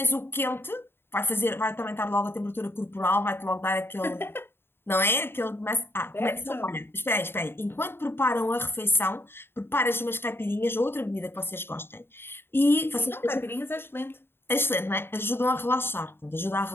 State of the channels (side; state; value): right; late; 0.11 ms